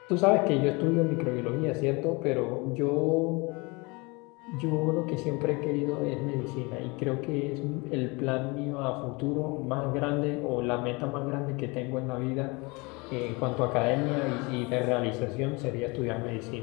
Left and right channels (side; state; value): right; quieter; 27.1 dB